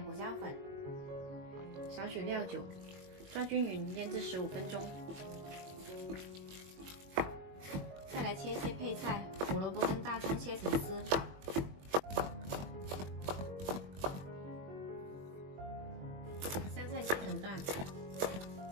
胡椒粉，少许料酒，抓均匀，腌制15分钟。再来切一些配菜，胡萝卜跟大葱切成丝，香菜切成段。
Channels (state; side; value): late; left; 21 ms